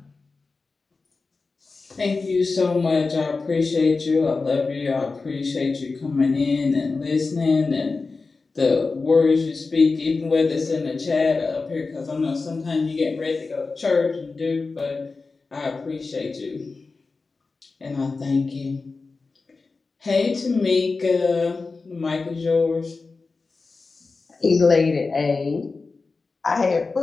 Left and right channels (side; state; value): right; quieter; 4.1 dB